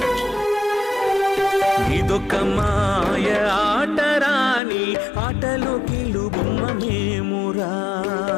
నీదొక్క మాయ ఆటరా నీ ఆటలో కీలు బొమ్మ మేమురా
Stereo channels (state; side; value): drops out; right; at 4.6 s